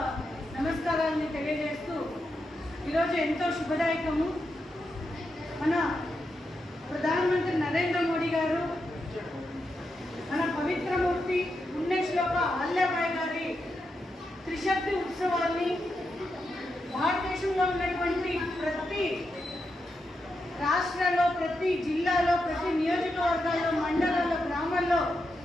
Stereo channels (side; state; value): both; normal; correlation 0.86